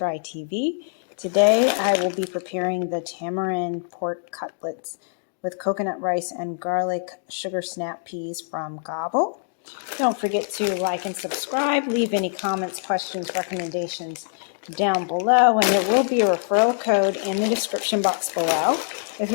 TV. Today I will be preparing the tamarind pork cutlets with coconut rice and garlic sugar snap peas from Gobble. Don't forget to like and subscribe. Leave any comments, questions, recommendations down below, and there will be a referral code in the description box below if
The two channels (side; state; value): right; silent; digital silence